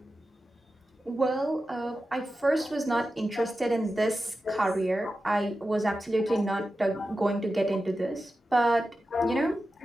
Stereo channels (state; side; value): normal; both; correlation 0.92